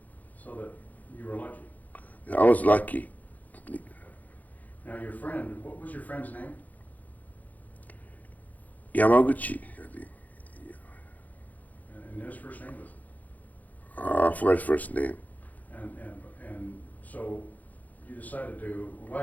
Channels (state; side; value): late; right; 0.079 ms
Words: So that you were lucky. I was lucky. Now your friend, what was your friend's name? Yamaguchi, I think. And his first name was? I forgot his first name. And so you decided to, why